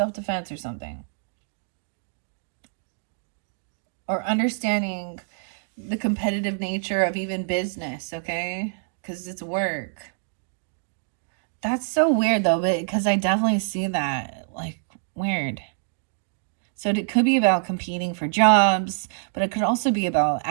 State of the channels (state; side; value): silent; left; digital silence